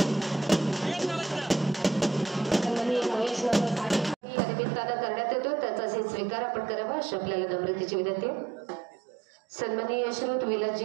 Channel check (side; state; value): left; drops out; at 4.2 s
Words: करण्यात येतो त्याचा स्वीकार आपण करावा अशी आपल्याला नम्रतेची विनंती। सन्माननीय श्रोत विलासजी